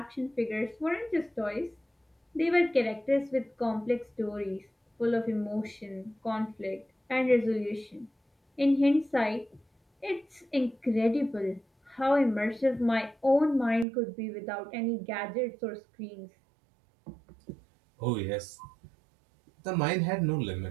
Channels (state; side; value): drops out; left; at 13.9 s